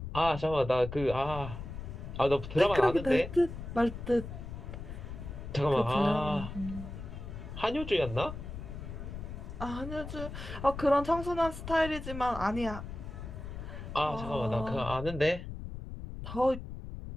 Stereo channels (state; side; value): noise; left; rumble, 9 dB below the sound